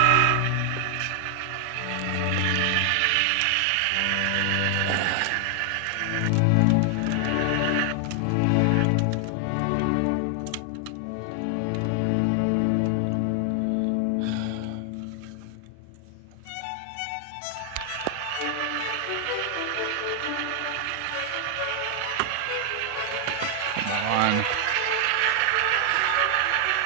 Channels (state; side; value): different; both; correlation 0.00